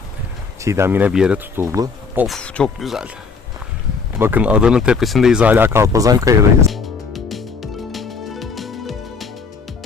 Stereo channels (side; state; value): right; quieter; 5.0 dB